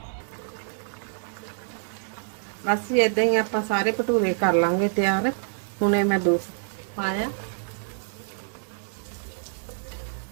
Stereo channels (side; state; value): left; silent; 60 dB below the other